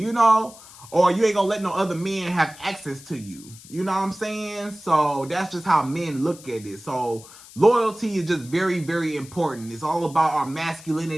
or you ain't gonna let no other men have access to you. You know what I'm saying? So that's just how men look at it. So loyalty is just very, very important. It's all about our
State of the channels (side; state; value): left; noise; hiss, 19 dB below the sound